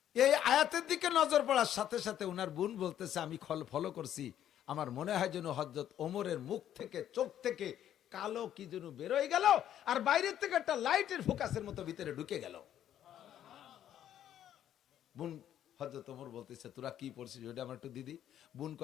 এই আয়াতের দিকে নজর পড়ার সাথে সাথে উনার বোন বলতেছে আমি ফলো করছি, আমার মনে হয় যেন হযরত ওমরের মুখ থেকে, চোখ থেকে কালো কি যেন বেরোয় গেল, আর বাইরের থেকে একটা লাইটের ফোকাসের মতো ভিতরে ঢুকে গেল। বোন হযরত ওমর বলতেছে তোরা কি পড়ছিস ওটা আমার একটু দিদি। বোন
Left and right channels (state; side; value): quieter; right; 10.9 dB